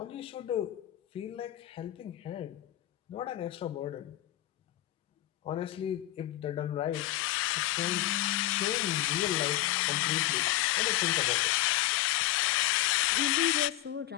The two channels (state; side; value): quieter; right; 15.3 dB